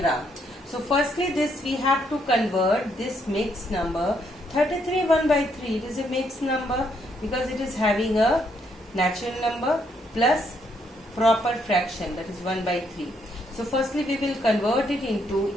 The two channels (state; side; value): normal; both; correlation 0.73